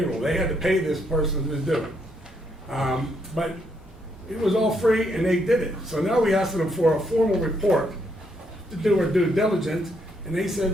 They had to pay this person to do it. But it was all free and they did it. So now we asked them for a formal report to do our due diligence, and they said,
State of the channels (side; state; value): both; normal; correlation 0.75